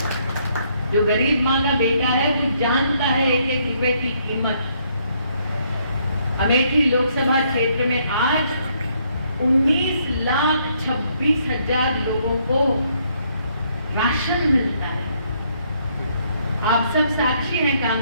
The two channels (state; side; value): inverted; both; correlation -0.70